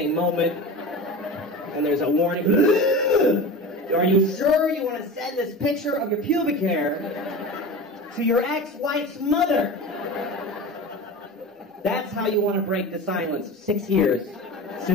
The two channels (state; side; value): normal; both; correlation 0.31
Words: moment, and there's a warning. Are you sure you want to send this picture of your pubic hair to your ex-wife's mother? That's how you want to break the silence of 6 years